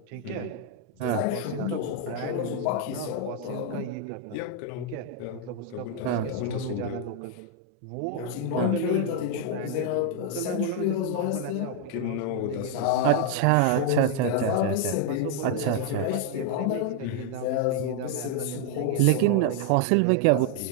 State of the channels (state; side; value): different; both; correlation 0.00